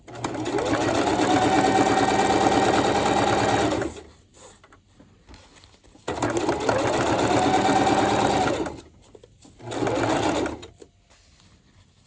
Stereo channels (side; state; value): both; identical; correlation 1.00